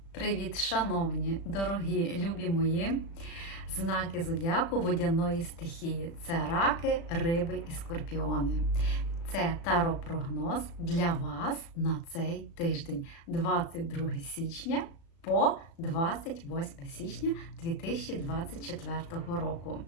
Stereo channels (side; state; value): right; late; 36 ms